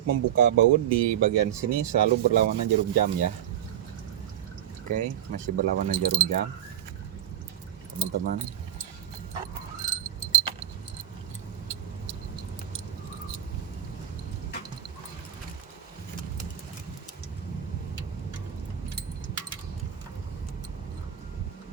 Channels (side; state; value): left; quieter; 10.6 dB